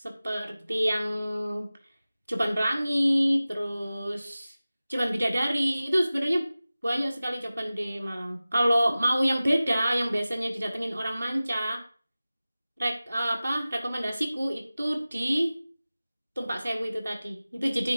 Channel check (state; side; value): inverted; both; correlation -0.96